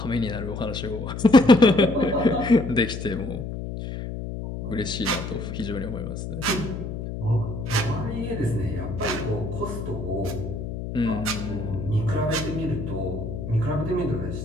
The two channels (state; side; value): noise; left; hum, 6 dB below the sound